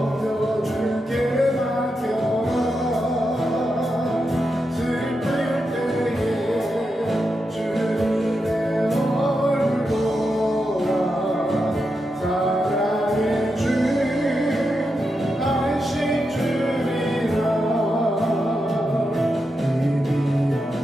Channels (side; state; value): both; normal; correlation 0.87